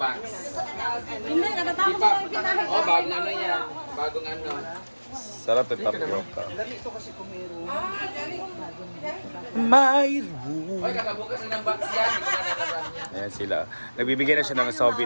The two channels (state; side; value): inverted; both; correlation -1.00